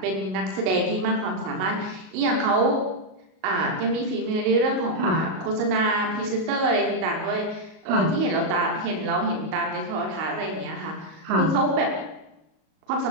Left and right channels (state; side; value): late; left; 38 ms